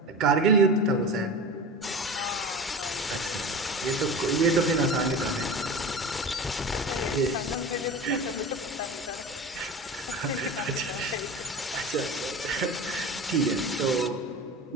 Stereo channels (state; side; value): normal; both; correlation 0.31